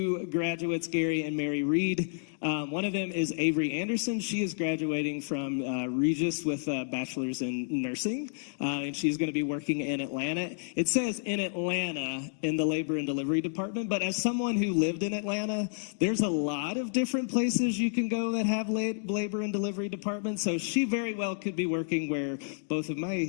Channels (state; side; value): silent; right; digital silence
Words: graduates, Gary and Mary Reed. One of them is Avery Anderson. She is graduating from Regis with a bachelor's in nursing, and she's going to be working in Atlanta. It says in Atlanta in the labor and delivery department, but as someone who lived in Atlanta, there's a lot of different places you can go that have labor and delivery departments, so she very well could be working where both of